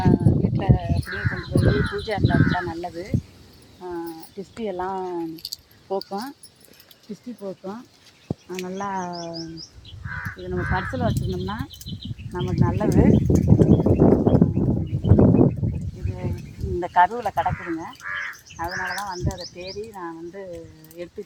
வீட்டில் அப்படியே கொண்டு போய் பூஜை அறையில் வச்சா நல்லது. டிஸ்டி எல்லாம் போக்கும், டிஸ்டி போக்கும். நல்லா இது நம்ம பர்ஸில் வச்சுருந்தோம்னா நமக்கு நல்லது. இது இந்த கருவில் கிடக்குதுங்க. அதனால தான் வந்து அதை தேடி நான் வந்து எடுத்து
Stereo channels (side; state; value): both; identical; correlation 1.00